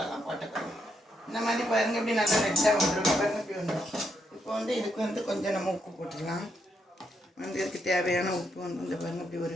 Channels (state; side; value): normal; both; correlation 0.78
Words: போட்டுக்கணும். இந்த மாதிரி பாருங்கள், இப்படி நல்லா ரெட்டாக வந்துடும். பாருங்கள், இப்படி வந்துடும். இப்போ இதுக்கு கொஞ்சம் நம்ம உப்பு போட்டுக்கலாம். இதுக்கு தேவையான உப்பு இந்த பாருங்கள், இப்படி